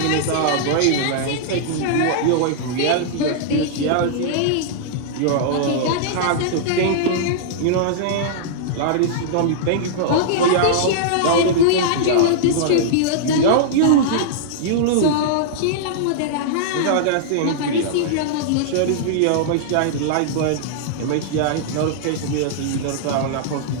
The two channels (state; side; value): different; both; correlation -0.02